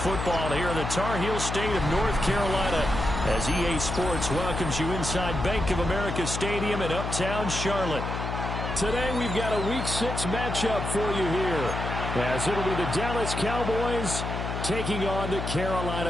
here in the Tar Heel state of North Carolina as EA Sports welcomes you inside Bank of America Stadium in uptown Charlotte. Today we've got a Week 6 matchup for you here as it'll be the Dallas Cowboys taking on the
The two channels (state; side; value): noise; left; hum, 4 dB below the sound